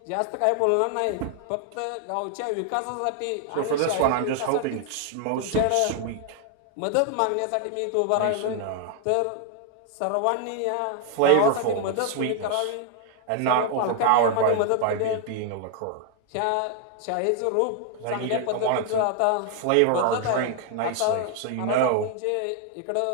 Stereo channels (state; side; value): different; both; correlation 0.00